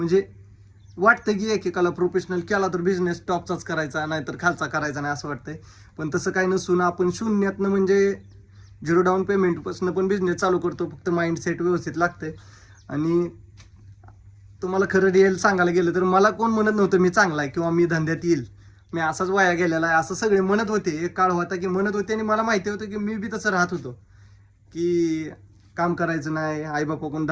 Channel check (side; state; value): both; identical; correlation 1.00